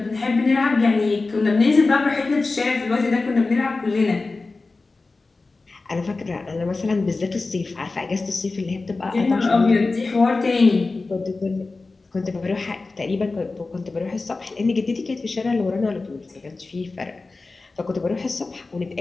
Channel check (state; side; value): quieter; right; 3.6 dB